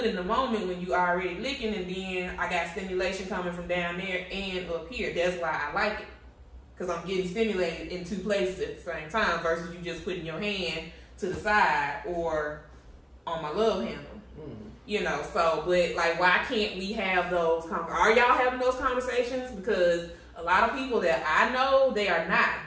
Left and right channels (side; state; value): both; identical; correlation 1.00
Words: in the moment when you already licking, and then I got stimulation coming from down there and up here. That's why I like it. Because I'm getting stimulated in two places at the same time versus you just putting your hand to the side or on my love handle. You know, so, but, like, why can't we have those Are y'all having those conversations? Because a lot of people that I know, they are not.